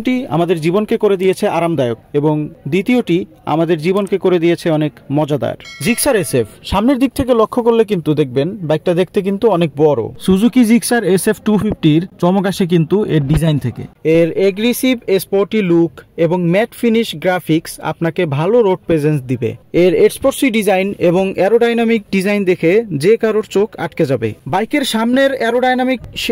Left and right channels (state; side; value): identical; both; correlation 1.00